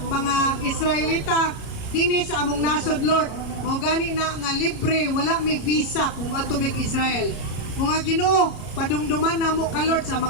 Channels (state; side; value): late; right; 33 ms